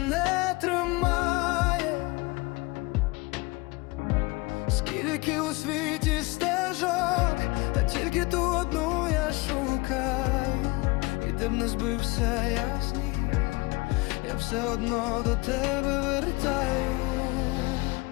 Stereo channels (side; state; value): right; quieter; 24.5 dB